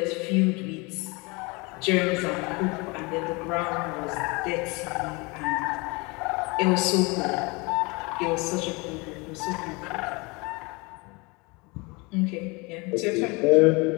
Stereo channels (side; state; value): right; quieter; 27.1 dB